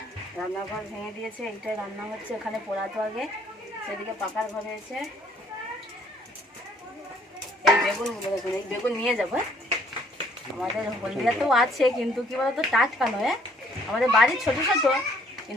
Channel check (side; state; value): both; normal; correlation 0.63